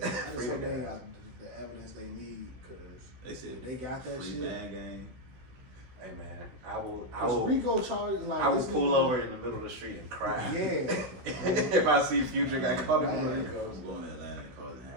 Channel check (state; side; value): late; left; 16 ms